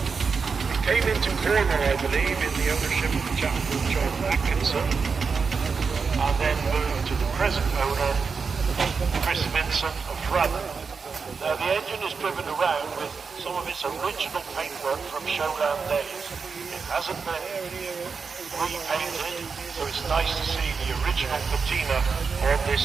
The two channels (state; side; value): quieter; left; 5.2 dB